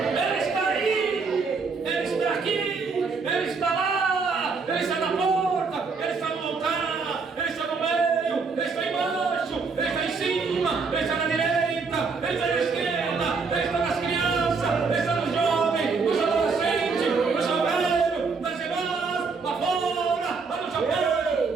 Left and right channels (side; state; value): left; quieter; 4.7 dB